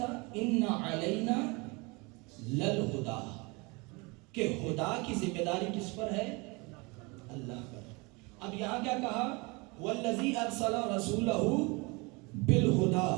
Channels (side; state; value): left; quieter; 27.5 dB